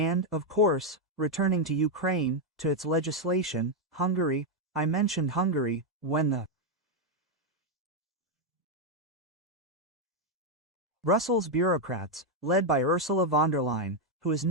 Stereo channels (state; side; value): normal; both; correlation 0.02